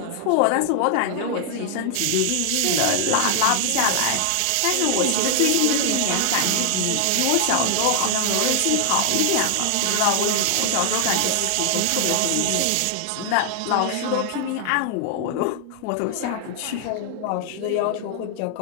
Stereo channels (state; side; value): different; both; correlation 0.00